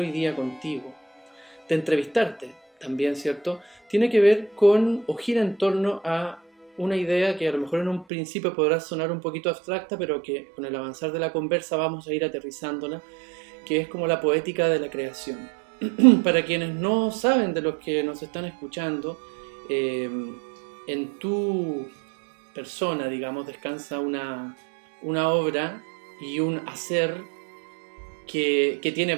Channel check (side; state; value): left; drops out; at 8.1 s